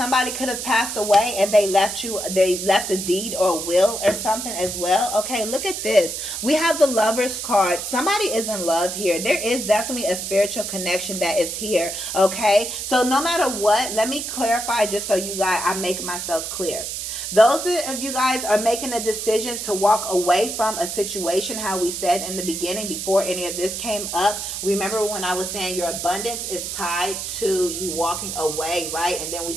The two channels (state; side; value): noise; right; hiss, 5 dB below the sound